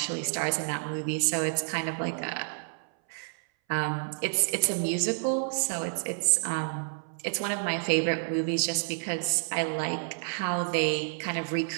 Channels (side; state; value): left; silent; 58 dB below the other